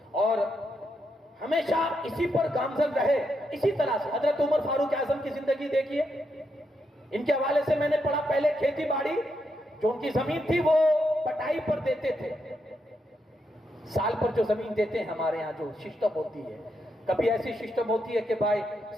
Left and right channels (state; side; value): normal; both; correlation 0.81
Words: اور ہمیشہ اسی پر گامزن رہے۔ اسی طرح سے حضرت عمر فاروق اعظم کی زندگی دیکھیے، ان کے حوالے سے میں نے پڑھا، پہلے کھیتی باڑی جو ان کی زمین تھی وہ پٹائی پر دیتے تھے، سال پر جو زمین دیتے ہیں ہمارے ہاں جو سسٹم ہوتی ہے، کبھی ایسی سسٹم ہوتی ہے کہ بھائی